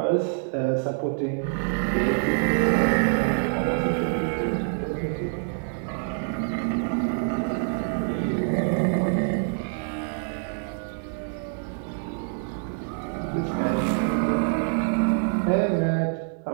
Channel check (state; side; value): silent; left; digital silence